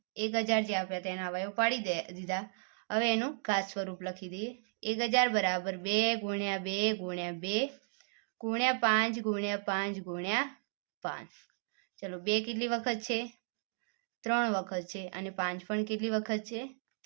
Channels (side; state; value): left; silent; digital silence